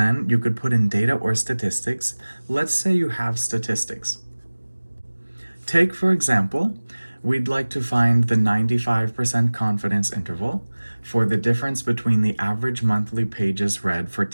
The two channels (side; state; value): both; inverted; correlation -1.00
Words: you could put in data or statistics. Let's say you have statistics. Take, for example, we'd like to find the 95% confidence interval for the difference between the average monthly pages read for